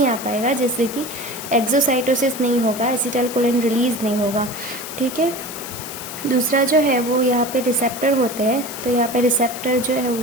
आ पाएगा, जिससे कि एक्सोसाइटोसिस नहीं होगा, एसिटाइल कोलिन रिलीज नहीं होगा। ठीक है, दूसरा जो है वो यहाँ पे रिसेप्टर होते हैं, तो यहाँ पे रिसेप्टर जो है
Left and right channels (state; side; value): noise; left; hiss, 10 dB below the sound